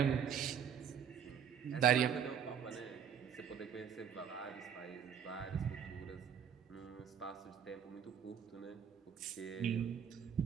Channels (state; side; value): quieter; left; 8.0 dB